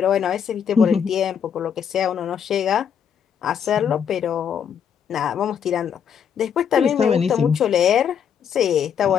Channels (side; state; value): right; quieter; 7.8 dB